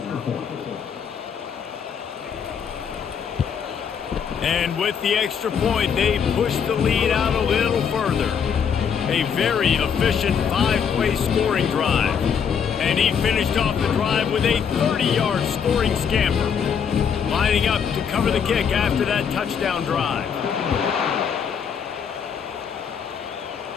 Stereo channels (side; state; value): right; quieter; 7.2 dB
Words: And with the extra point, they push the lead out a little further. A very efficient 5-play scoring drive. And he finished off the drive with a 30-yard scoring scamper. Lining up to cover the kick after that touchdown drive.